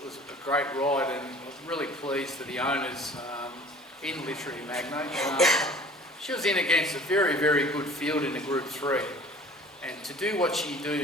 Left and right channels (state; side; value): normal; both; correlation 0.47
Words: was a great ride, and I was really pleased for the owners in Literary Magnate. She was in against a very, very good field in the Group 3, and to do what she